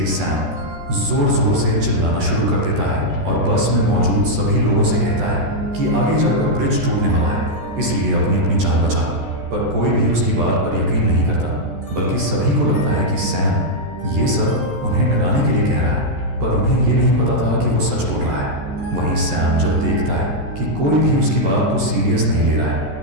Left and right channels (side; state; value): left; late; 14 ms